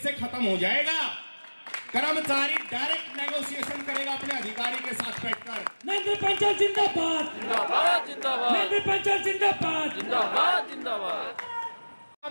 से खत्म हो जाएगा। कर्मचारी डायरेक्ट नेगोशिएशन करेगा अपने अधिकारी के साथ बैठकर। नरेंद्र पंचाल जिंदाबाद, जिंदाबाद जिंदाबाद, नरेंद्र पंचाल जिंदाबाद, जिंदाबाद जिंदाबाद।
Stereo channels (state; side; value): inverted; both; correlation -1.00